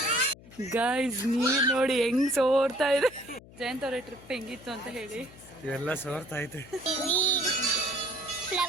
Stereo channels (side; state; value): left; noise; hum, 21 dB below the sound